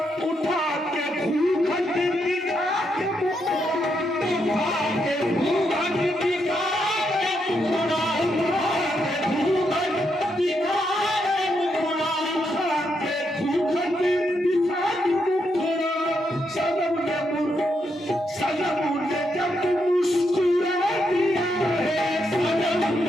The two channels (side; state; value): both; normal; correlation 0.80